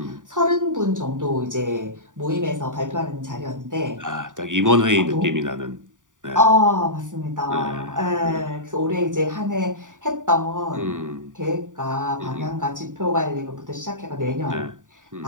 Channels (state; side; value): late; left; 0.87 ms